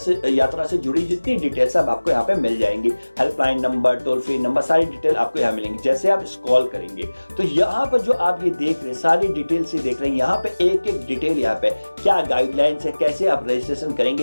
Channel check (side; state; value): both; inverted; correlation -1.00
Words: से जुड़ी जितनी डिटेल सब आपको यहाँ पे मिल जाएंगी। Helpline number, toll free number, सारी डिटेल आपको यहाँ मिलेंगी। जैसे आप स्क्रॉल करेंगे तो यहाँ पर जो आप ये देख रहे हैं, सारी डिटेल से देख रहे हैं, यहाँ पे एक एक डिटेल, यहाँ पे क्या गाइडलाइंस है, कैसे आप रजिस्ट्रेशन